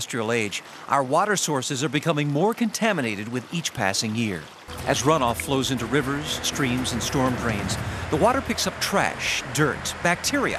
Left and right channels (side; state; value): both; identical; correlation 1.00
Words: age, our water sources are becoming more contaminated with each passing year. As runoff flows into rivers, streams, and storm drains, the water picks up trash, dirt, bacteria,